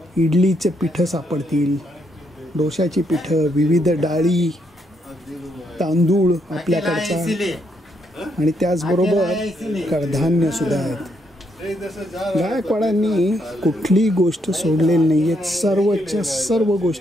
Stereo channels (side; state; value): both; normal; correlation 0.76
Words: इडलीचे पिठं सापडतील, डोशाची पिठं, विविध डाळी, तांदूळ आपल्याकडचा, आणि त्याचबरोबर कडधान्य सुद्धा आहेत. गायकवाडांनी कुठली गोष्ट सोडलेली नाही आहेत. सर्वच्या सर्व